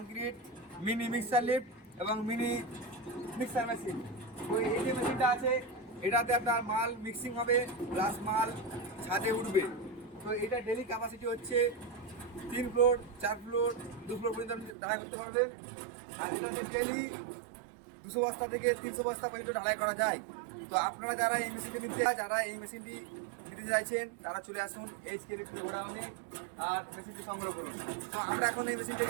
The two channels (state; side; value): drops out; left; at 14.8 s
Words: mini mixer lift এবং মিনি মিক্সার মেশিন। তো এই যে মেশিনটা আছে, এটাতে আপনার মাল মিক্সিং হবে প্লাস মাল ছাদে উঠবে। তো এটা ডেলি ক্যাপাসিটি হচ্ছে 3 ফ্লোর 4 ফ্লোর 2 ফ্লোর পর্যন্ত আপনি ঢালাই করতে পারবেন। আর এটা হচ্ছে ডেলি 200 বস্তা থেকে 300 বস্তা পর্যন্ত ঢালাই করা যায়। তো আপনারা যারা এই মেশিনটি নিতে চাইছেন তারা চলে আসুন এইচকে লিফটের গোডাউনে আর মেশিনটি সংগ্রহ করুন। তো আমরা এখন এই